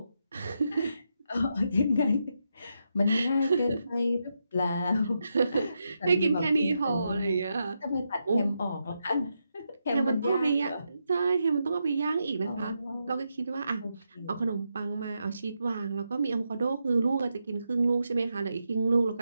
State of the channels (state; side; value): inverted; both; correlation -0.84